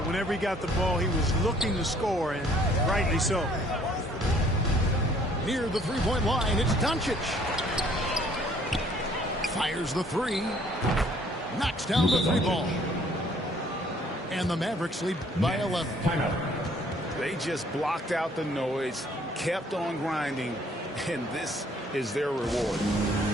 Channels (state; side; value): normal; both; correlation 0.60